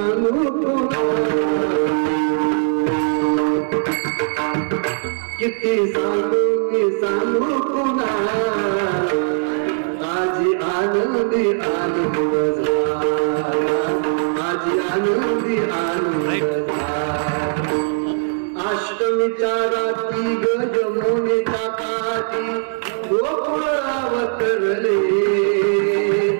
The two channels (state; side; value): silent; left; digital silence